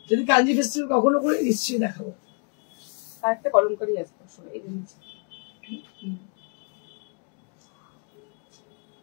যদি কাঞ্জি ফেস্টিভ্যাল কখনো করি নিশ্চয়ই দেখাবো। আর একটা কলমকারি আছে আসলে এই জিনিস।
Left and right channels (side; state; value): right; quieter; 37.9 dB